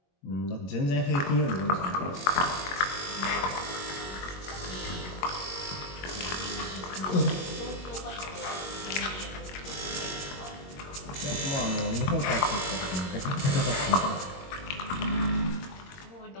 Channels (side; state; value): right; late; 21 ms